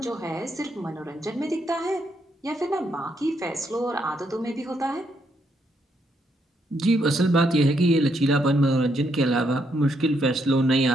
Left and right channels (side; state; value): both; normal; correlation 0.76